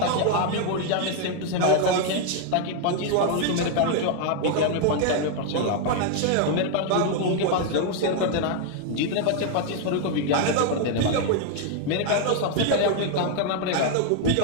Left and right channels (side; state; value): both; different; correlation 0.00